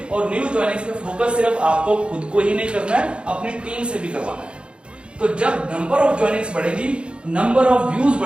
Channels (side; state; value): left; late; 0.056 ms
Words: और न्यू ज्वाइनिंग्स पे फोकस सिर्फ आपको खुद को ही नहीं करना है, अपनी टीम से भी करवाना है। तो जब नंबर ऑफ ज्वाइनिंग्स बढ़ेगी, नंबर ऑफ व्यूज